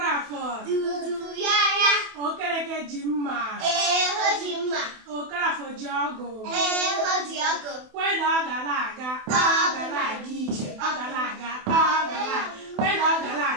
dudu ya okereke ji mma ho ji mma okorafọ ji ọgụ ho ji ọgụ. kwe na ọ ga na-aga ije. Ọ ga na-aga kwe na ọ ga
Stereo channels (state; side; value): late; left; 28 ms